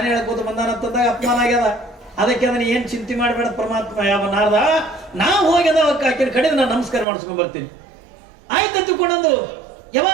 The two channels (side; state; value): left; drops out; at 7.1 s